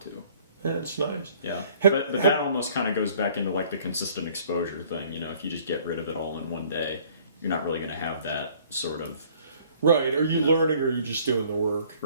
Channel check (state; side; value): inverted; both; correlation -0.56